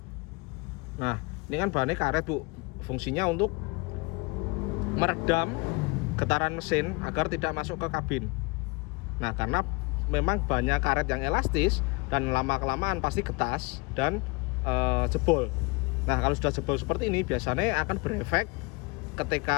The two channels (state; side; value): quieter; right; 27.6 dB